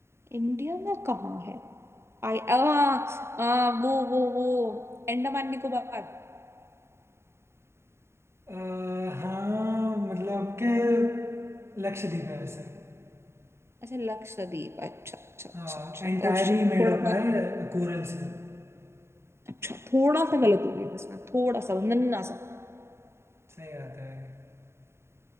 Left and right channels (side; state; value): left; late; 0.13 ms